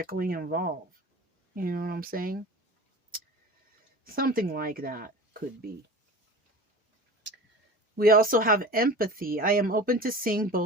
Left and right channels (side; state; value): both; normal; correlation 0.36